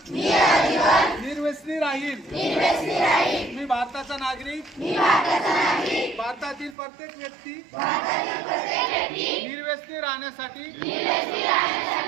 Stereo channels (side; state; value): left; drops out; at 6.8 s